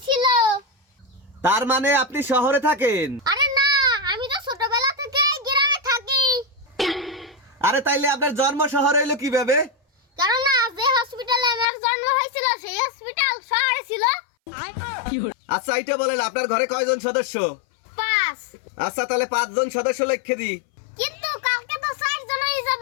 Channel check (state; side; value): drops out; right; at 11.7 s